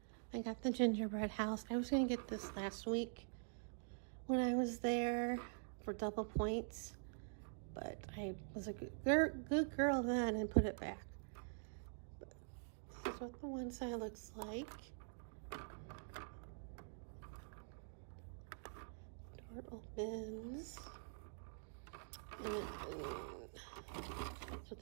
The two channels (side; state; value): left; silent; digital silence